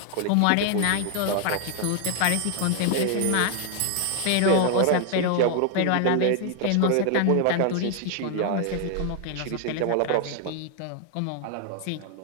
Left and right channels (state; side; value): different; both; correlation 0.00